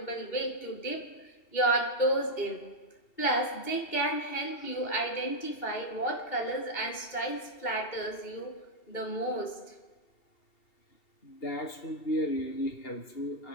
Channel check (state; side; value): late; right; 2.7 ms